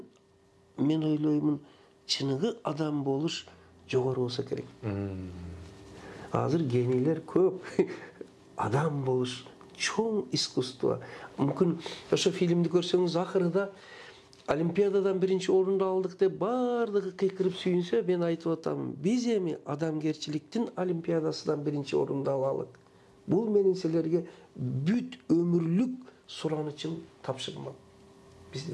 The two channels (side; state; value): both; identical; correlation 1.00